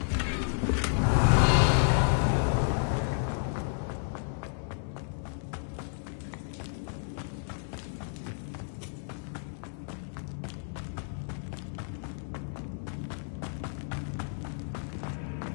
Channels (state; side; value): silent; right; digital silence